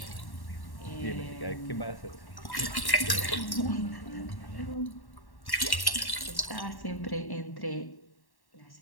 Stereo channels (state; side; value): late; right; 1.1 ms